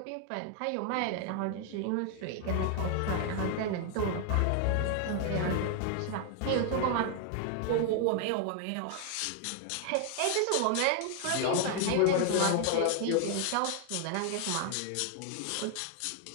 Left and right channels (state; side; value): different; both; correlation 0.00